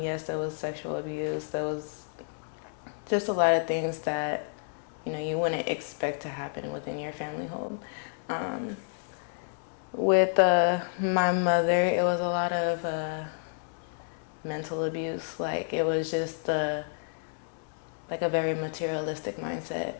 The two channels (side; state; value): right; silent; 58 dB below the other